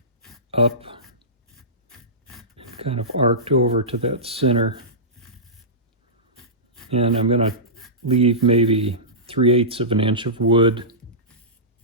up kind of arced over to that center. And I'm going to leave maybe 3/8 of an inch of wood.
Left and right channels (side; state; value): both; normal; correlation -0.19